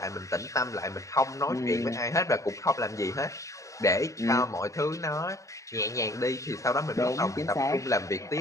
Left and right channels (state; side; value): late; right; 0.16 ms